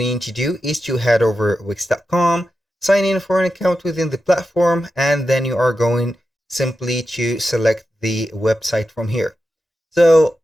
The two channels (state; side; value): normal; both; correlation 0.90